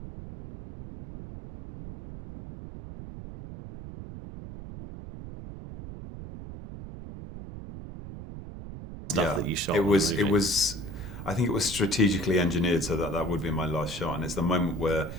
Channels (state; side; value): noise; right; rumble, 11 dB below the sound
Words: Stuff that you shot it on the was it movie. was I think it was strategically engineered so that that would be my last shot, and it's the moment where